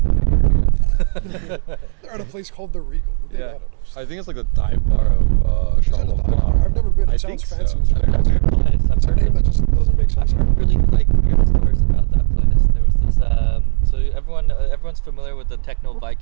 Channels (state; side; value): silent; left; digital silence